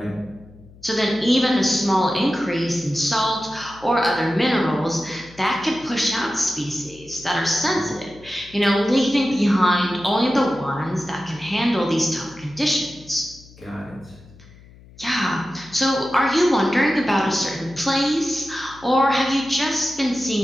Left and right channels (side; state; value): left; noise; hum, 23 dB below the sound